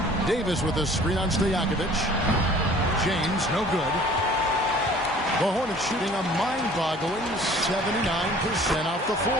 Davis with a screen on Stojakovic. James, no good. The Hornets shooting a mind-boggling 79% off the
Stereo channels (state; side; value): normal; both; correlation 0.50